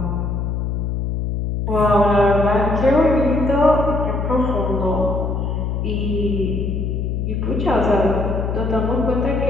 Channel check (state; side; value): noise; left; hum, 1 dB below the sound